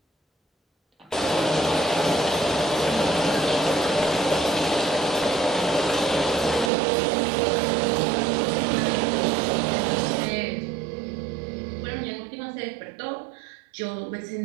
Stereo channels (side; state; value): left; drops out; at 6.7 s